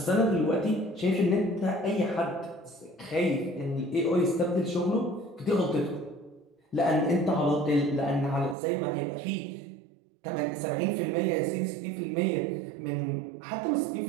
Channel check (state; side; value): drops out; left; at 8.6 s